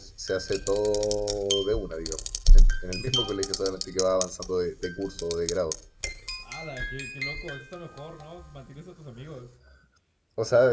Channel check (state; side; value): identical; both; correlation 1.00